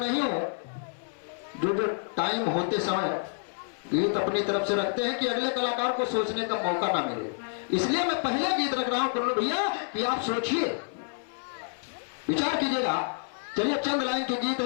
हूं जो टाइम होते समय गीत अपनी तरफ से रखते हैं कि अगले कलाकार को सोचने का मौका ना मिले, इसलिए मैं पहले गीत रख रहा हूं कुल्लू भैया कि आप सोचिए, विचार कीजिएगा। चलिए चंद लाइन के गीत है,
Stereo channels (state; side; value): silent; right; 59 dB below the other